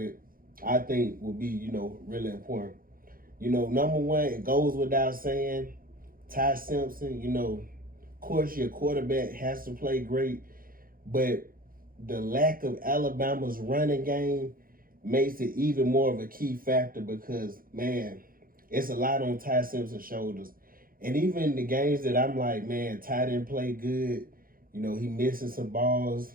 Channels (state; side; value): late; left; 0.42 ms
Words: I think will be, really important. Number one, it goes without saying, Ty Simpson. Of course, your quarterback has to play great, but the lack of Alabama's running game makes it even more of a key factor because, man, it's a lot on Ty Simpson's shoulders. And even the games that I'm like, man, Ty didn't play good, he missing some balls.